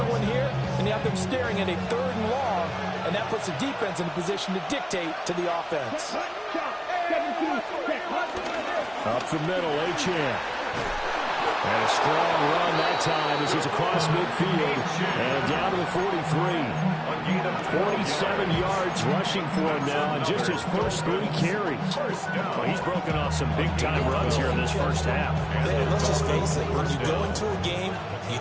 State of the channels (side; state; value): both; identical; correlation 1.00